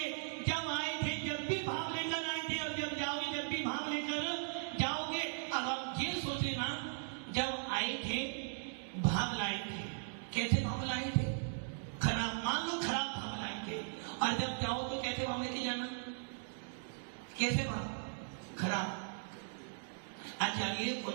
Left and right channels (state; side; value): silent; left; digital silence